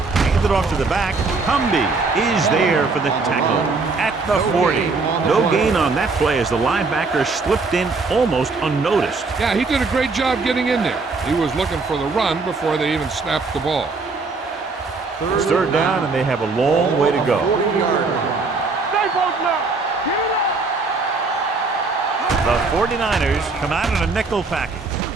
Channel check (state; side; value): quieter; left; 4.0 dB